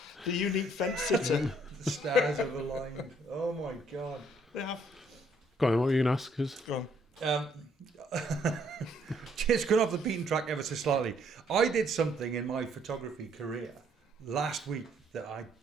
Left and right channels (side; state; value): both; normal; correlation 0.67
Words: The unique fence sitter. The stars have aligned. Oh my God. They have. Go on, what were you going to ask us? Go on. Just going off the beaten track ever so slightly. I did something in my photography career last week that I